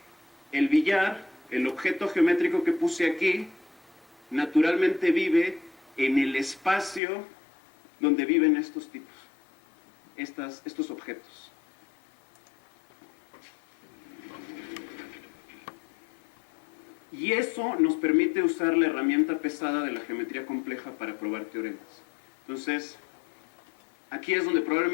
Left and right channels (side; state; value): right; drops out; at 7.0 s